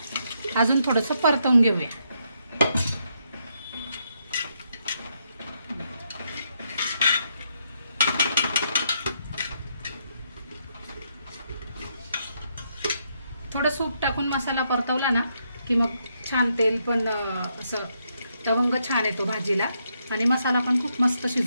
अजून थोडंसं परतवून घेऊया. थोडं सूप टाकून मसाला परतवला ना की मग छान तेल पण असं तवंग छान येतो भाजीला आणि मसाला पण खूप मस्त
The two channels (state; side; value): inverted; both; correlation -0.77